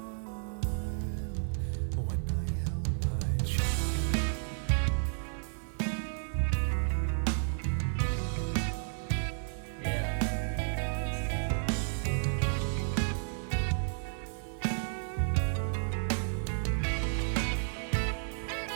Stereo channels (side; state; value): left; silent; digital silence